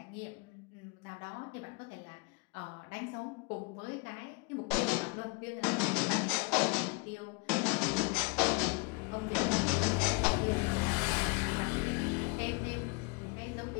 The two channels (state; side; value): quieter; right; 29.8 dB